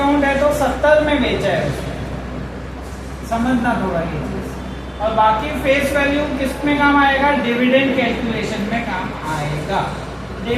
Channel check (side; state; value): both; identical; correlation 1.00